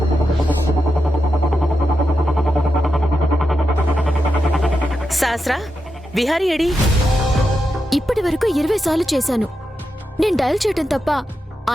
సహస్ర, విహారీ ఏడి? ఇప్పటి వరకు 20 సార్లు చేశాను. నేను డయల్ చేయడం తప్ప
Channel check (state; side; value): normal; both; correlation 0.88